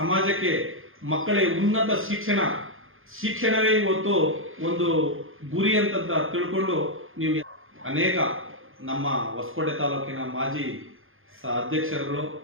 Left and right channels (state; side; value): late; left; 0.60 ms